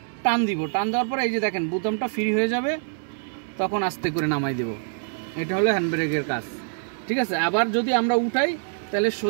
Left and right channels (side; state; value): left; silent; digital silence